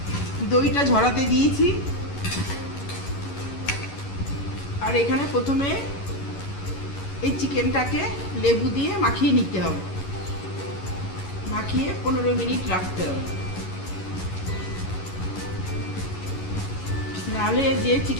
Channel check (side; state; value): right; late; 11 ms